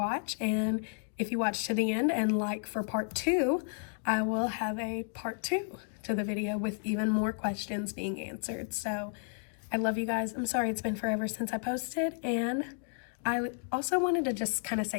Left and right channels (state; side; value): silent; right; 56 dB below the other